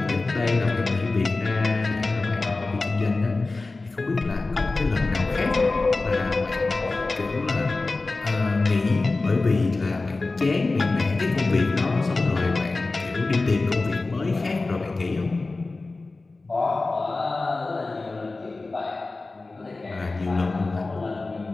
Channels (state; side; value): quieter; right; 3.4 dB